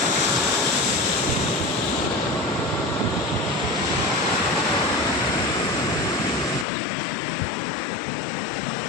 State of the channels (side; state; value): right; drops out; at 6.7 s